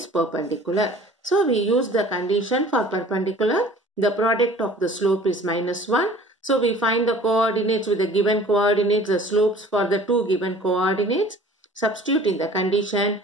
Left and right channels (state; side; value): normal; both; correlation 0.48